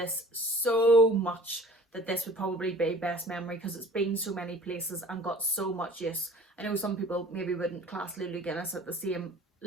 so much that this would probably be best memory, because it's been so many places and got so much use. I know some people maybe wouldn't class Lulu Guinness at the same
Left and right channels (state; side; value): normal; both; correlation 0.46